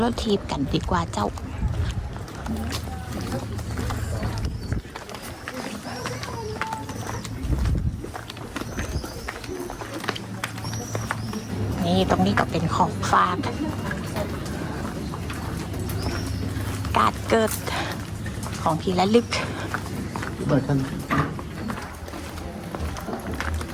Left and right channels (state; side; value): identical; both; correlation 1.00